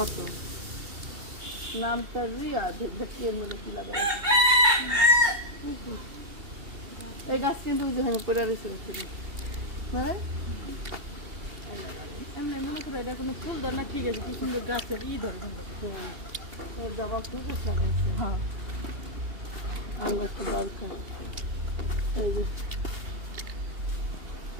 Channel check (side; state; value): left; late; 2.7 ms